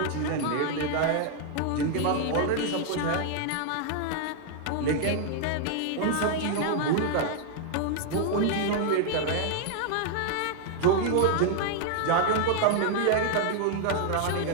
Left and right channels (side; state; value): both; different; correlation 0.00